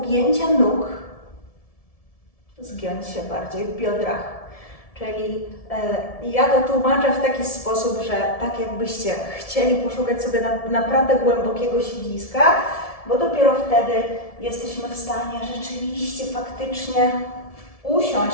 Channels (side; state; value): right; late; 1.7 ms